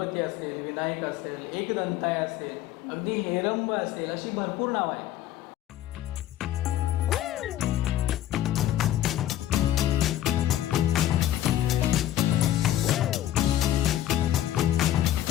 असेल, विनायक असेल, एकदंताय असेल, अगदी हेरंब असेल, अशी भरपूर नावं आहेत.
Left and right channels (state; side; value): quieter; right; 12.7 dB